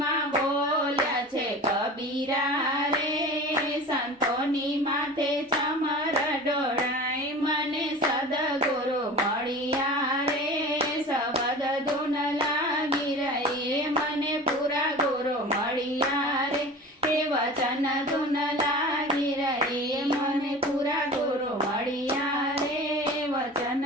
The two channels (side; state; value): both; normal; correlation 0.37